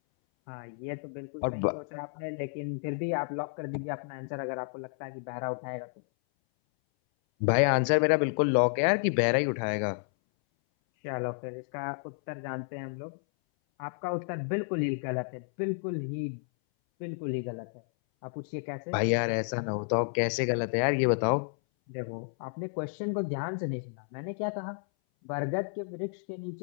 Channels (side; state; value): right; silent; 57 dB below the other